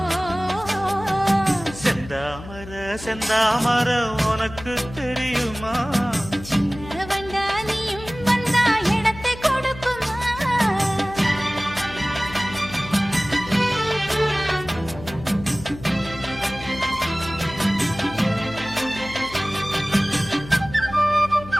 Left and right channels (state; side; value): noise; left; hum, 14 dB below the sound